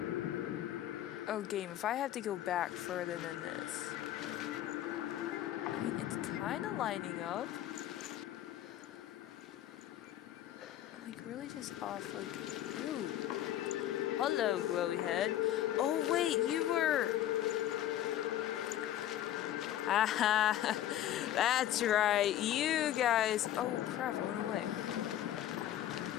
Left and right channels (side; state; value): right; quieter; 12.4 dB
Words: Oh, game, if I have to go back further than this... I mean, it's kind of lining up. Like, really just off, like... Ooh. Hello, glowy head. Oh, wait, you were... Haha, that's right, you guys... Oh, crap, I went away.